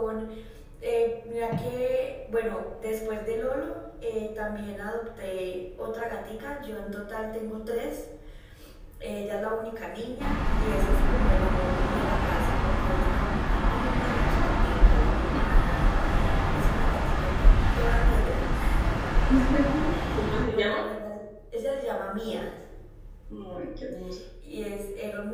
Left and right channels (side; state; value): both; identical; correlation 1.00